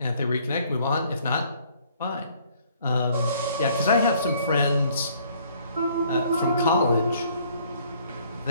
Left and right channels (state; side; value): inverted; both; correlation -0.61